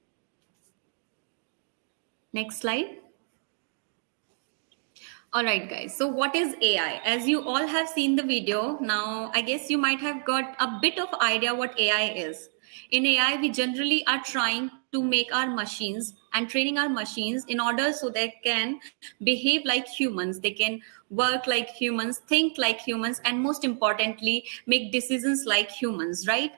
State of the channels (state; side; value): silent; left; 59 dB below the other